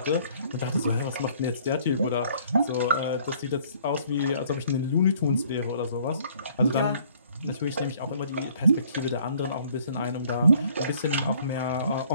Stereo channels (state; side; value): inverted; both; correlation -0.59